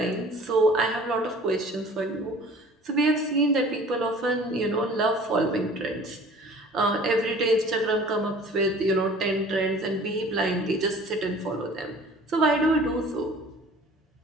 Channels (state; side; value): normal; both; correlation 0.47